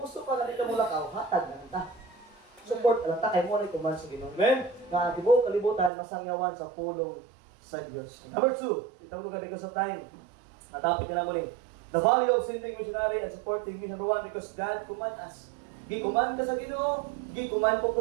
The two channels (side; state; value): left; drops out; at 5.9 s